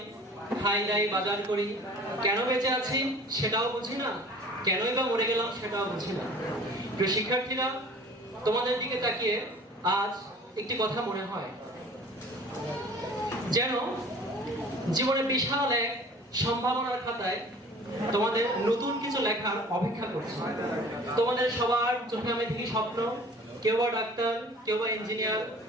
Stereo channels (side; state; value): both; normal; correlation 0.46